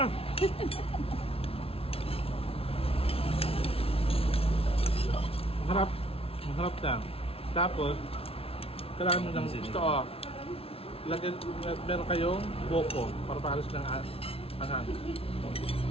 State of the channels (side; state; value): right; late; 0.27 ms